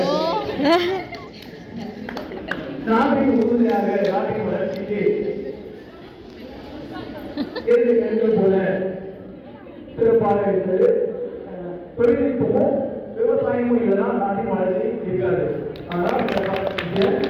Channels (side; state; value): both; identical; correlation 1.00